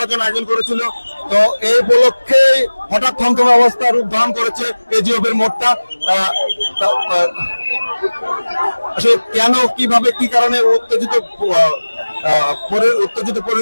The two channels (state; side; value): inverted; both; correlation -1.00